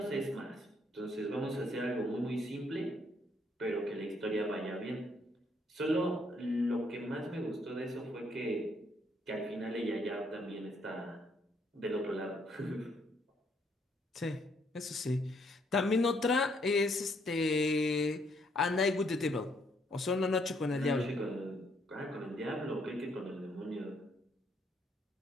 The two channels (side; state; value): both; normal; correlation 0.70